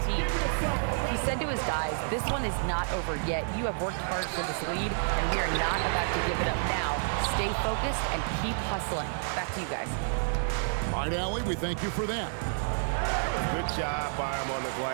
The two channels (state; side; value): silent; left; digital silence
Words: team. He said to his guys, "This one is not over yet. You have worked hard for this lead, and we are not about to give it up now. Stay focused and keep hustling." Back to you guys. All right, Allie, we thank you for that. Good job by him on the